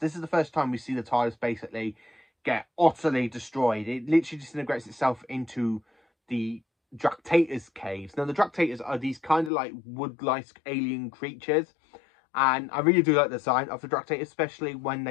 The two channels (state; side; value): drops out; right; at 9.5 s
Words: is the first time we see the TARDIS basically get utterly destroyed. It literally disintegrates itself into the Dractator's caves. Now, the Dractators are these kind of like wood-like alien creatures, and I really do like the design of the Dractators, especially when